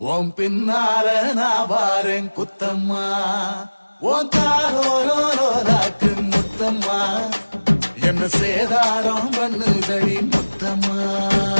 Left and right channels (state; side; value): inverted; both; correlation -1.00